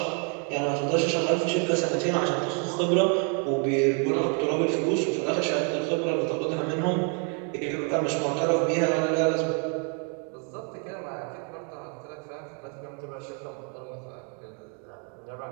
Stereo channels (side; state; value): left; quieter; 39.1 dB